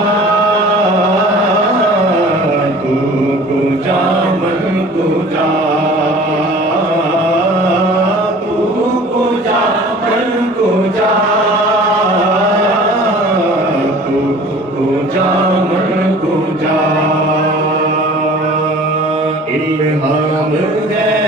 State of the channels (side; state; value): both; normal; correlation 0.45